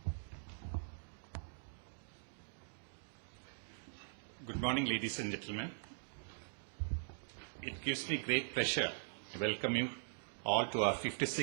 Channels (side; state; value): left; silent; digital silence